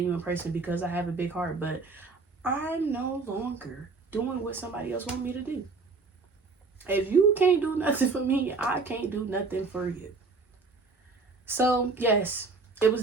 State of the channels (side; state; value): left; quieter; 4.1 dB